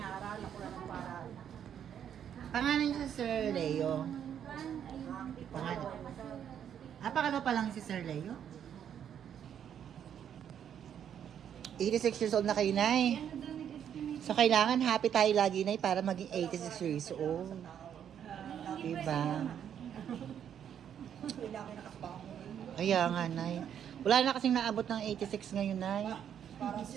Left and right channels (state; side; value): quieter; left; 9.0 dB